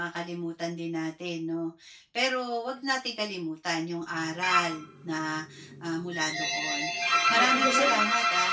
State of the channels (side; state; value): both; identical; correlation 1.00